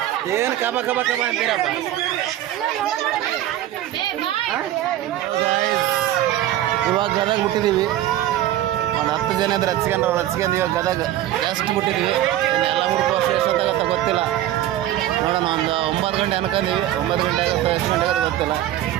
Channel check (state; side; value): quieter; left; 13.1 dB